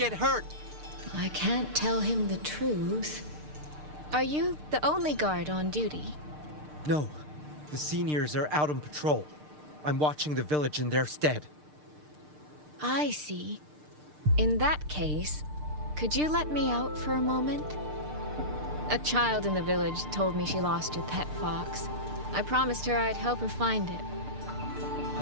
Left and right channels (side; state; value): left; late; 6.6 ms